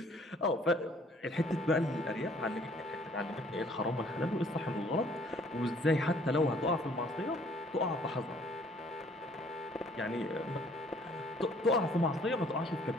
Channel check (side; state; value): both; normal; correlation 0.59